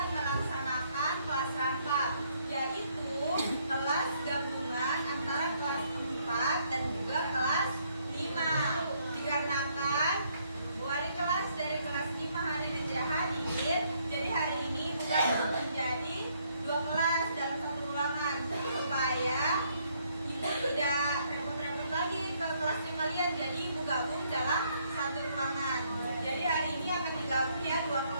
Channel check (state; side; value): inverted; both; correlation -0.70